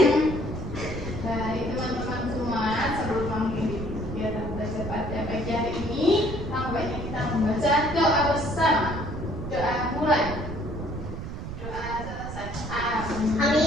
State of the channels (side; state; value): right; noise; rumble, 7 dB below the sound